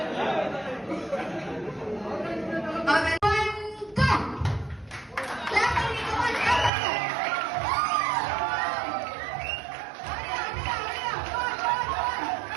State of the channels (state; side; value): drops out; left; at 6.7 s